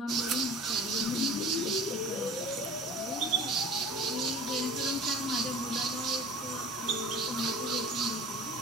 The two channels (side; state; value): both; normal; correlation 0.42